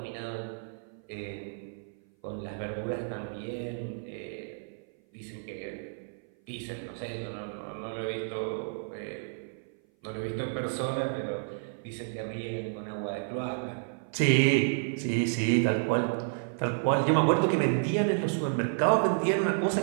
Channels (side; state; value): left; silent; 55 dB below the other